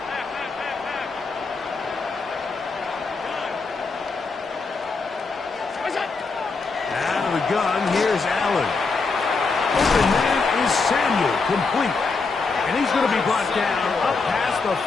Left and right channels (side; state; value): right; quieter; 4.3 dB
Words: Out of the gun, here's Allen. Open man is Samuel, complete. And he's going to be brought down up past the